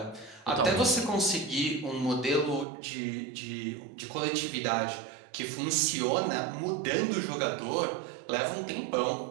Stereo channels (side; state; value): left; drops out; at 2.7 s